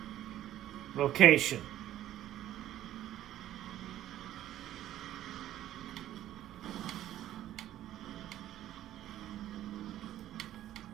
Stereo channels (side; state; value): left; quieter; 12.9 dB